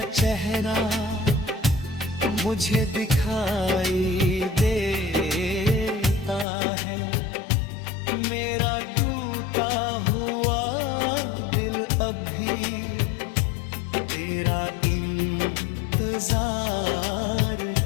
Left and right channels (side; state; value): right; drops out; at 6.5 s